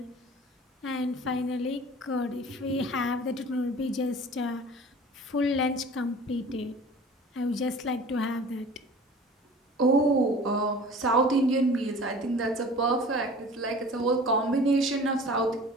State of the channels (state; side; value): normal; both; correlation 0.43